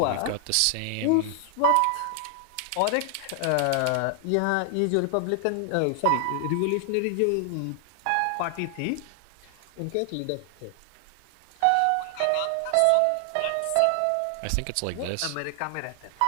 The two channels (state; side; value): different; both; correlation 0.00